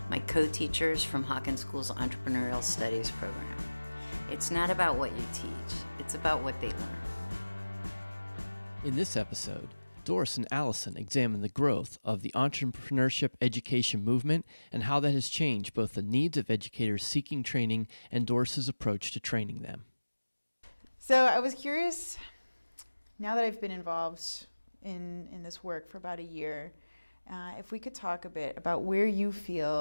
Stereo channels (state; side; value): inverted; both; correlation -1.00